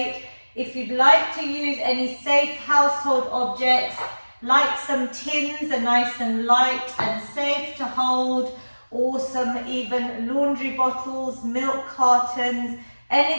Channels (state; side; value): inverted; both; correlation -1.00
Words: If you'd like to use any safe household objects, like some tins are nice and light and safe to hold, or some even laundry bottles, milk cartons,